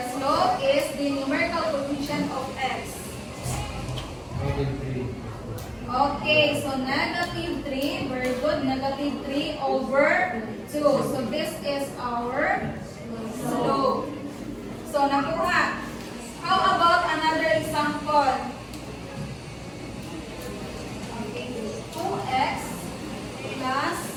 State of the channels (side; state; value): both; identical; correlation 1.00